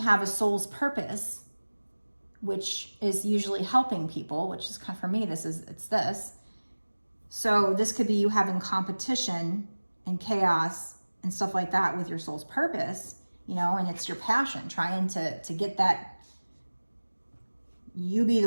a soul's purpose, which is usually helping people, which is kind of, for me, it's this. So this could be you having competition and chaos and stuff like that with your soul's purpose, you know, and it's your passion, trying to get that, you be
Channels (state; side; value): inverted; both; correlation -1.00